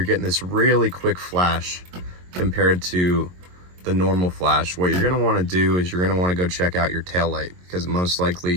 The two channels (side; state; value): left; late; 22 ms